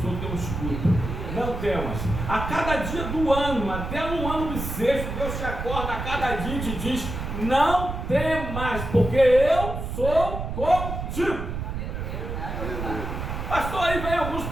sou teu escudo. Não temas. A cada dia do ano, até no ano bissexto, Deus te acorda a cada dia e te diz: não temas, porque eu sou contigo. Pastor, aí vem alguns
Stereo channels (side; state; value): right; noise; rumble, 5 dB below the sound